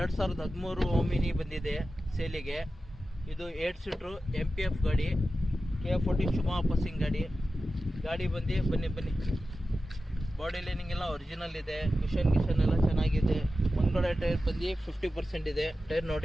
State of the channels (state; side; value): normal; both; correlation 0.93